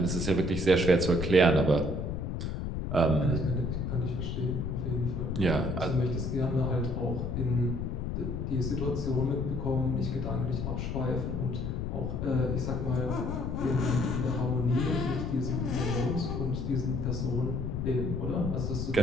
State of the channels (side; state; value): left; noise; rumble, 2 dB below the sound